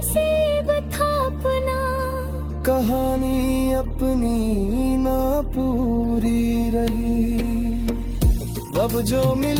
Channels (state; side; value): identical; both; correlation 1.00